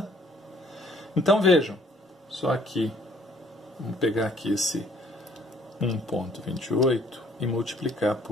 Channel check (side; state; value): both; normal; correlation 0.60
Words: Então vejam, só aqui, vamos pegar aqui esse 1,28 e multiplicar